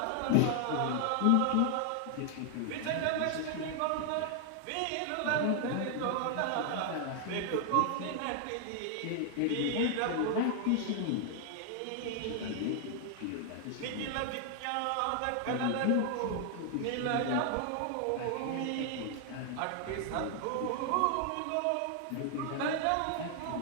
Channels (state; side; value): different; both; correlation 0.00